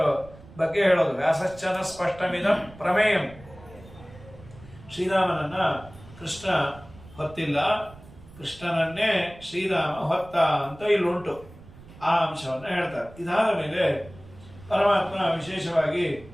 ಬಗ್ಗೆ ಹೇಳೋದು, ವ್ಯಾಸಶ್ಚನ ಸ್ಪಷ್ಟಮಿದಂ ಪ್ರಮೇಯಂ. ಶ್ರೀರಾಮನನ್ನ ಕೃಷ್ಣ ಹೊತ್ತಿಲ್ಲ, ಕೃಷ್ಣನನ್ನೇ ಶ್ರೀರಾಮ ಹೊತ್ತ ಅಂತ ಇಲ್ಲುಂಟು. ಆ ಅಂಶವನ್ನ ಹೇಳ್ತಾರೆ. ಇದಾದ ಮೇಲೆ ಪರಮಾತ್ಮ ವಿಶೇಷವಾಗಿ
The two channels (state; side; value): noise; right; rumble, 20 dB below the sound